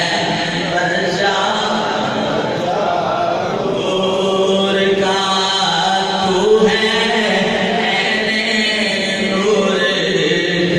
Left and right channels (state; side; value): identical; both; correlation 1.00